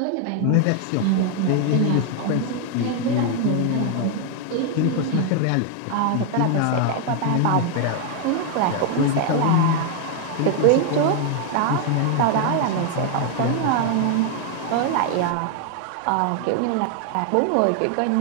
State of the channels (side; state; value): both; different; correlation 0.00